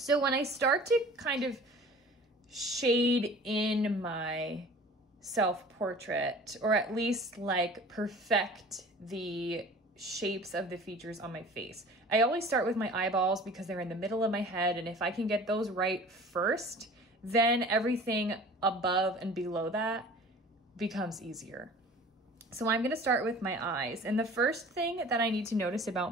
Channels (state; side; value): normal; both; correlation 0.44